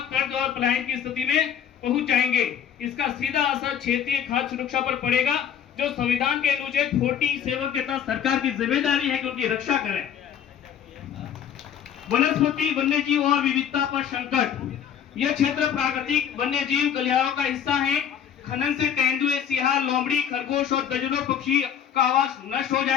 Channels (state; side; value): quieter; right; 8.7 dB